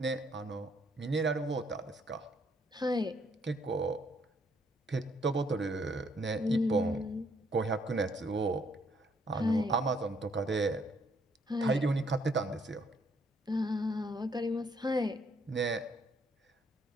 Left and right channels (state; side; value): normal; both; correlation 0.69